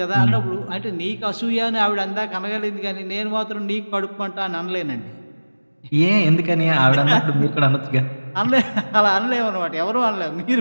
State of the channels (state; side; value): inverted; both; correlation -1.00